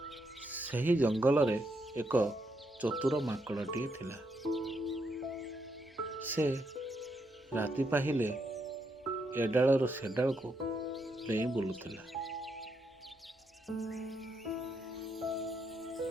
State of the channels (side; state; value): both; normal; correlation 0.79